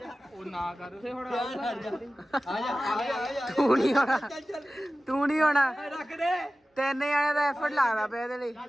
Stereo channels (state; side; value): normal; both; correlation 0.96